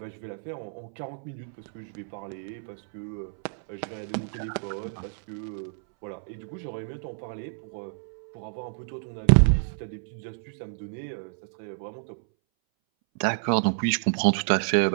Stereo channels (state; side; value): silent; left; 59 dB below the other